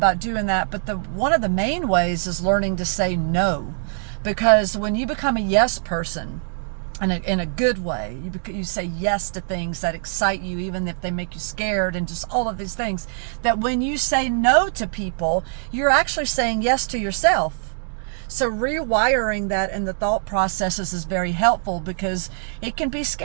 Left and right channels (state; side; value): silent; left; digital silence